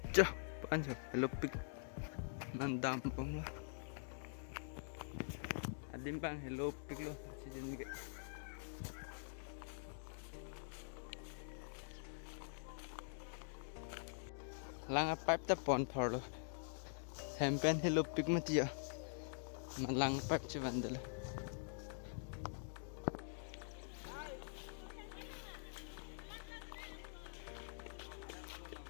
cho pan cho hello pik mandam pom la adim bang hello pik lo achijun ke lang pipe ta pon phor lo hempen hello pik matia na lang pipe che vandala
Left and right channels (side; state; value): right; silent; digital silence